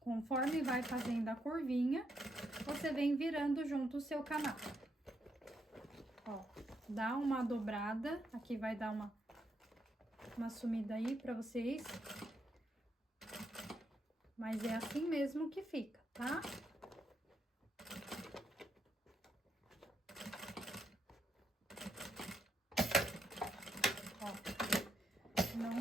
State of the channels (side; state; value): both; normal; correlation 0.78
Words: Conforme vai fazendo a curvinha, você vem virando junto o seu canal. Ó, dá uma dobrada, aqui vai dar uma sumida aí pra vocês. Mas é assim mesmo que fica, tá? Não